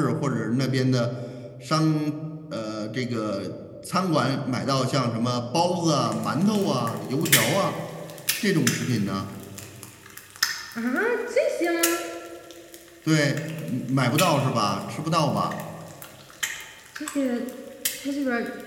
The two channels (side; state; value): both; identical; correlation 1.00